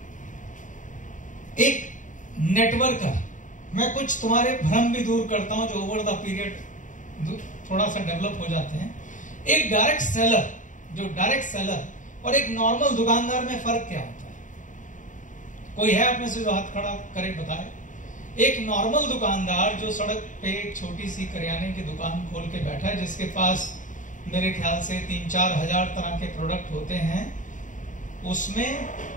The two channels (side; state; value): right; late; 0.37 ms